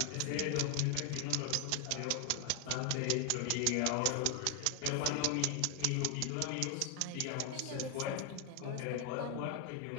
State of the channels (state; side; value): different; both; correlation 0.00